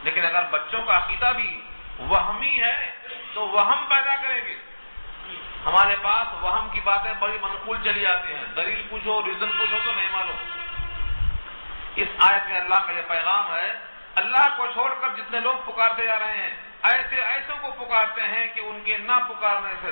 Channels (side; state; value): both; inverted; correlation -1.00